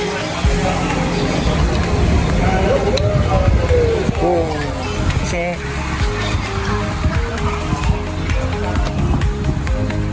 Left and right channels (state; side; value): identical; both; correlation 1.00